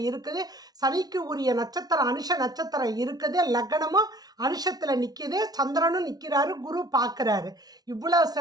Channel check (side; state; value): left; late; 0.19 ms